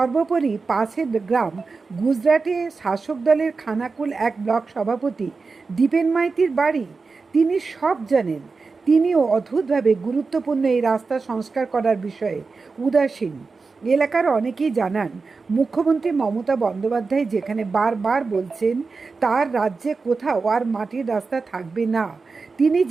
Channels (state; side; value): quieter; left; 4.4 dB